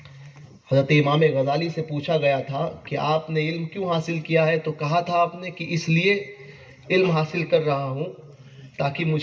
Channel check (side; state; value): both; identical; correlation 1.00